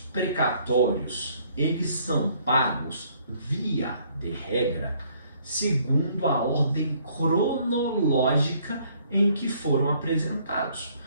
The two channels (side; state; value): both; inverted; correlation -0.64